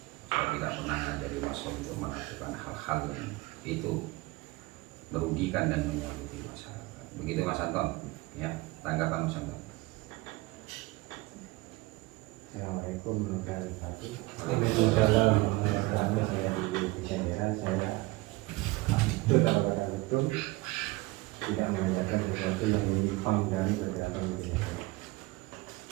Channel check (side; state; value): left; quieter; 21.6 dB